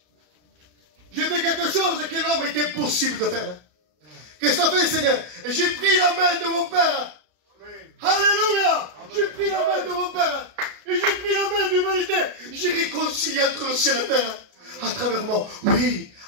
J'ai fait quelque chose que l'homme était impossible de faire. Qu'est-ce que tu as fait, Seigneur? Et j'ai pris la main de mon Père. Amen. Alléluia. J'ai pris la main de mon Père. Et j'ai pris la main de l'humanité. J'ai réconcilié entre le ciel et la terre. À travers moi. Oui,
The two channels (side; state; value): left; late; 33 ms